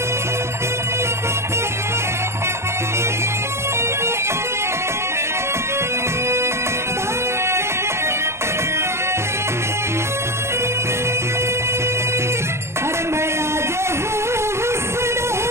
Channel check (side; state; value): left; late; 0.13 ms